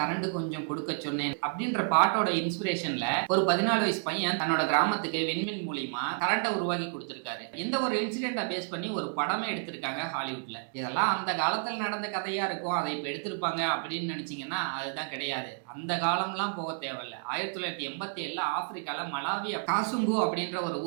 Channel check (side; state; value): left; silent; 57 dB below the other